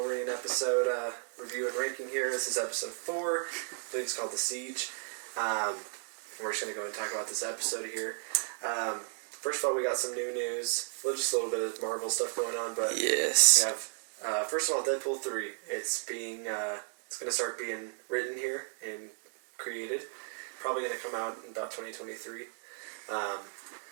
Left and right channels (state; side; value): silent; left; 55 dB below the other